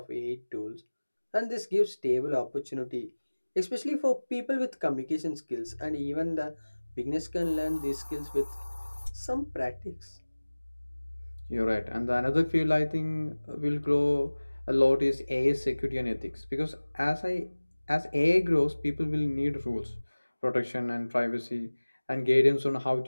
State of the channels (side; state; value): both; inverted; correlation -1.00